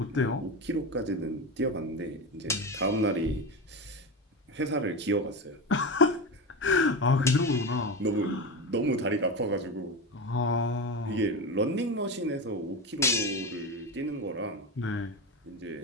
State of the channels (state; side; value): normal; both; correlation 0.20